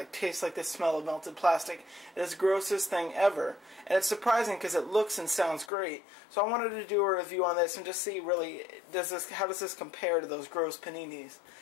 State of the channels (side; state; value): right; drops out; at 5.7 s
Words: tastes like the smell of melted plastic. It's the grossest thing ever, and it's surprising because it looks and sounds great. So I wanted to do a review on this and just see really, how does this compare to those gross paninis?